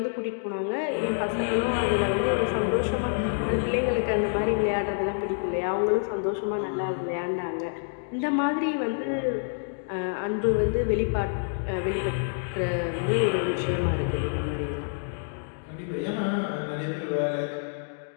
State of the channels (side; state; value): right; silent; digital silence